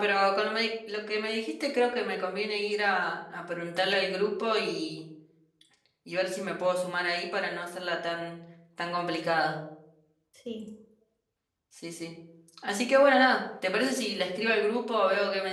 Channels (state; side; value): identical; both; correlation 1.00